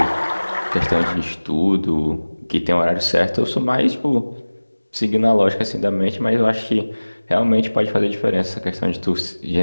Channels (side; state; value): both; inverted; correlation -1.00